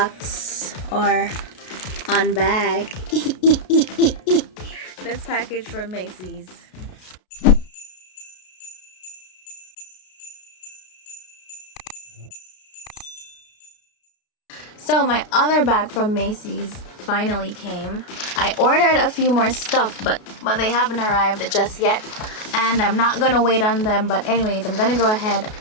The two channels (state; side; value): late; right; 33 ms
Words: or unbag this package from Macy's. So my other bag from Macy's finally came. I ordered a few more stuff, but they haven't arrived just yet. And I'm not gonna wait on them, but anyways, I'm gonna go ahead